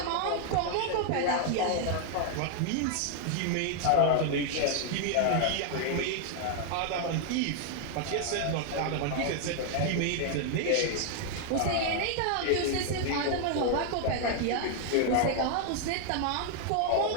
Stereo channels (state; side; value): different; both; correlation 0.00